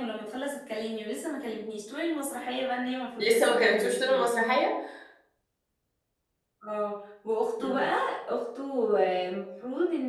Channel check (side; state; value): both; identical; correlation 1.00